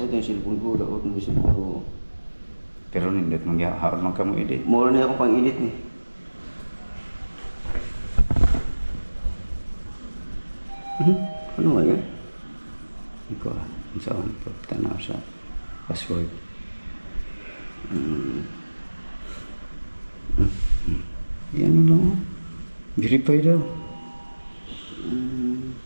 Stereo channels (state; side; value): inverted; both; correlation -1.00